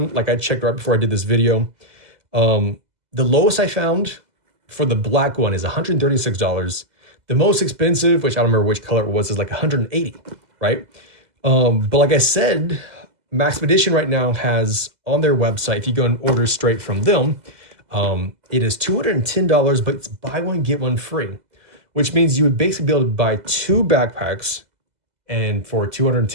like I checked right before I did this video, the lowest I found for the black one is $136. The most expensive, which I don't remember which color it was, is like $180, right? But like I said, Maxpedition right now has on their website, if you go and order straight from them, it is $210, but it's buy one, get one free, which means you would basically be able to buy 2 backpacks, and for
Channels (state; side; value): late; left; 2.0 ms